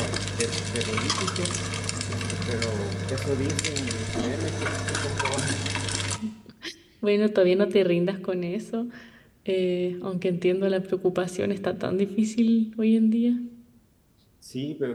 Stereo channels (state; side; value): identical; both; correlation 1.00